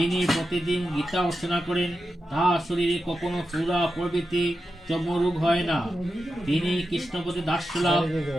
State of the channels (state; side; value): normal; both; correlation 0.90